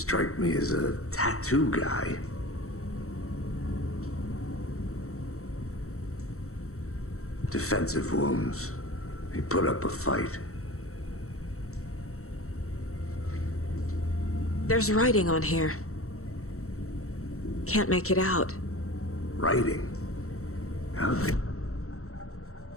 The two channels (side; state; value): right; late; 0.64 ms